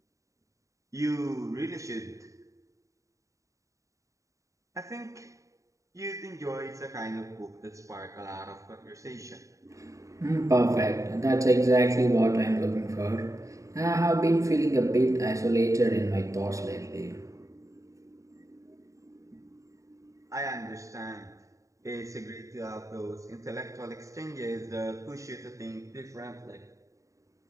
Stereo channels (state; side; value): late; left; 0.16 ms